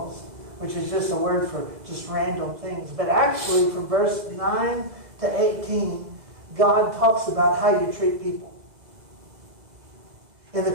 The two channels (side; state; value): left; late; 2.0 ms